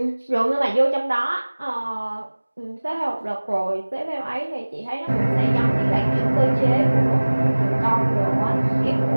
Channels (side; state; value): both; inverted; correlation -1.00